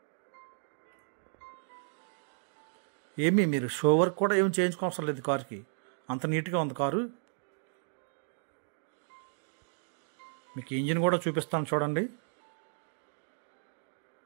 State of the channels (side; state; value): left; silent; digital silence